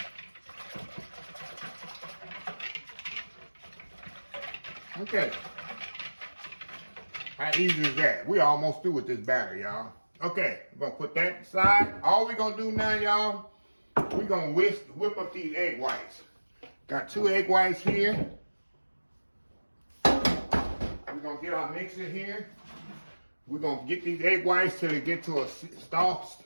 Okay. How easy is that? We almost through with this batter, y'all. Okay, we're gonna put that aside. All we're gonna do now, y'all, we're gonna whip up these egg whites. Got 2 egg whites here. We're gonna get our mixer here. We're gonna get these egg whites till they get to a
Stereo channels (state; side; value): inverted; both; correlation -1.00